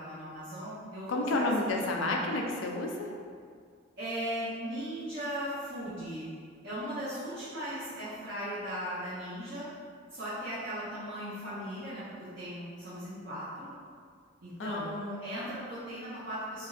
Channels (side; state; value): both; normal; correlation 0.23